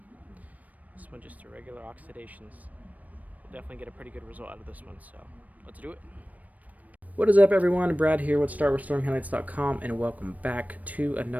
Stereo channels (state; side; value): late; left; 0.073 ms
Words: this one just a regular oxidations. We'll definitely get a pretty good result out of this one, so let's do it. What is up everyone, Brad here with StartRestoringHeadlights.com, and welcome back to